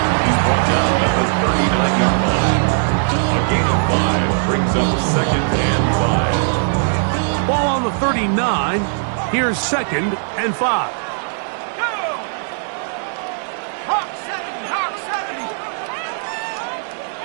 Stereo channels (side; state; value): left; silent; 64 dB below the other